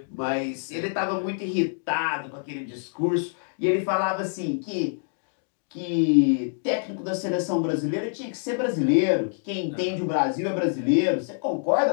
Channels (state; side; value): silent; right; digital silence